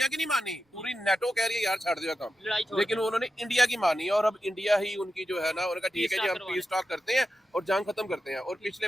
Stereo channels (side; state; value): both; normal; correlation 0.90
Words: की नहीं मानी, पूरी नेटो कह रही है यार छाड़ दिया काम, लेकिन उन्होंने इंडिया की मानी और अब इंडिया ही उनकी जो है ना, उनका ठीक है जी हम पीस टॉक करते हैं और जंग खत्म करते हैं। और